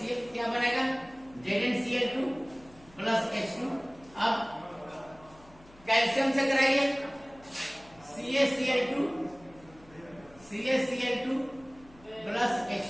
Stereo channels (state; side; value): noise; left; hum, 25 dB below the sound